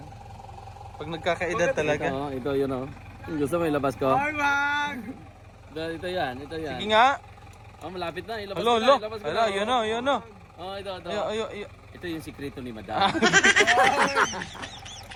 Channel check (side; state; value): both; identical; correlation 1.00